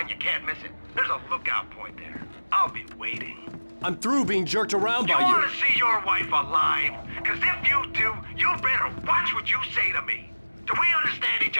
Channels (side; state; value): both; inverted; correlation -1.00